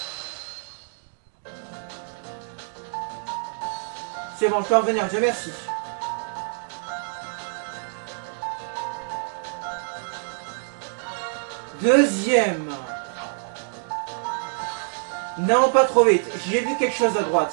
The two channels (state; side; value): silent; left; digital silence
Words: C'est bon, je peux revenir, Dieu merci. Deuxième. Non, pas trop vite. J'ai vu quelque chose à